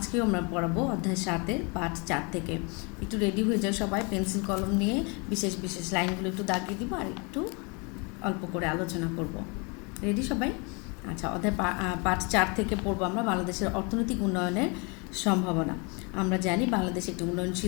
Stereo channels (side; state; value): right; quieter; 31.7 dB